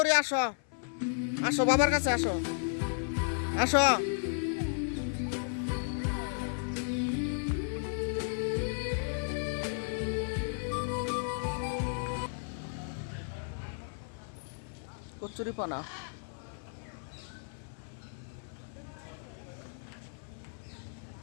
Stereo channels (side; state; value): right; silent; 55 dB below the other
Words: আসো। আসো বাবার কাছে আসো। আসো কচুরি পানা।